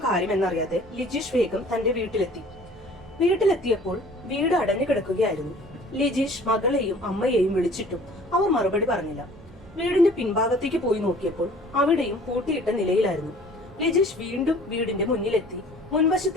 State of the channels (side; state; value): both; normal; correlation 0.50